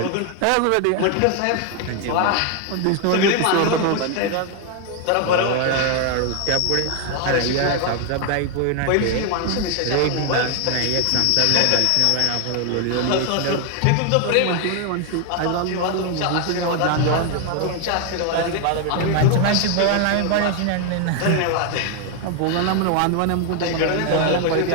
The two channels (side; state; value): both; different; correlation 0.01